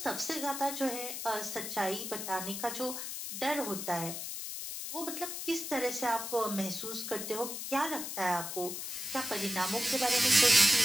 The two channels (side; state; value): left; noise; hiss, 6 dB below the sound